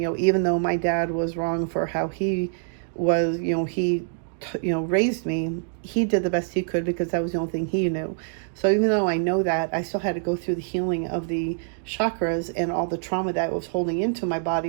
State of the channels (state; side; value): silent; left; digital silence